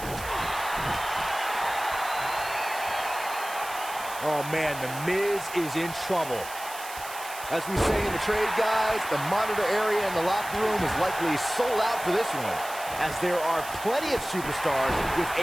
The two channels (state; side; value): noise; right; hiss, 13 dB below the sound